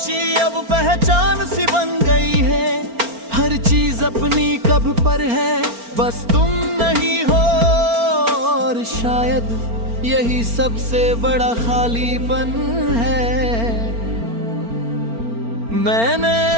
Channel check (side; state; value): left; late; 4.4 ms